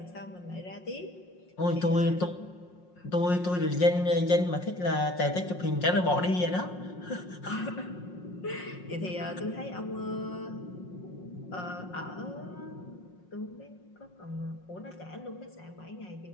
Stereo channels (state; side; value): late; right; 5.5 ms